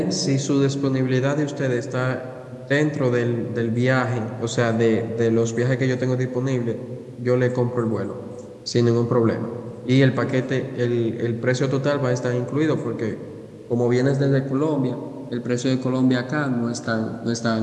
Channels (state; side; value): identical; both; correlation 1.00